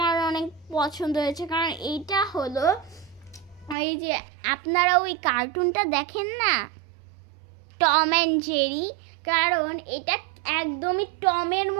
অনেক পছন্দ হয়েছে, কারণ এইটা হলো এই যে আপনারা ওই কার্টুনটা দেখেন না, টম অ্যান্ড জেরি, কারণ এটা একদমই টমের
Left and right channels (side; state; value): left; drops out; at 3.8 s